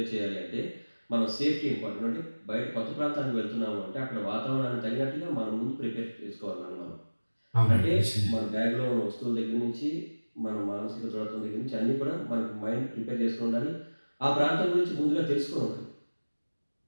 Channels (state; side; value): inverted; both; correlation -1.00